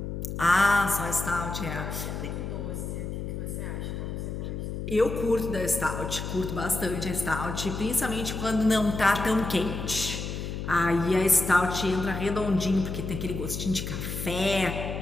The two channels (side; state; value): left; noise; hum, 5 dB below the sound